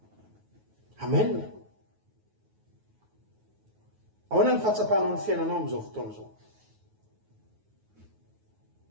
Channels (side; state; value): left; late; 9.4 ms